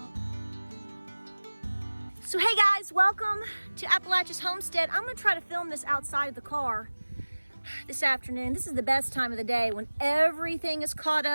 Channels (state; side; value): inverted; both; correlation -1.00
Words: So hey guys, welcome to Appalachia's Homestead. I'm gonna try to film this outside of the car this afternoon. This is the best time of the day when everything is caught